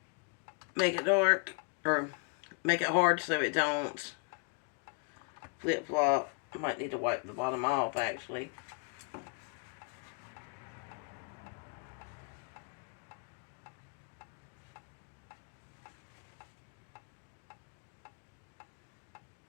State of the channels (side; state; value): right; quieter; 37.5 dB